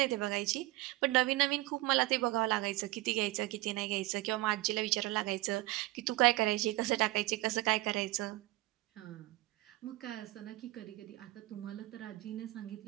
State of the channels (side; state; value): left; quieter; 18.8 dB